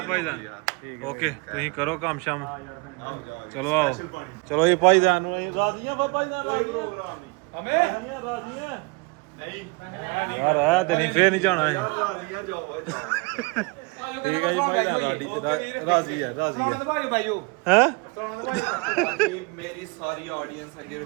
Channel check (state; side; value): quieter; left; 29.1 dB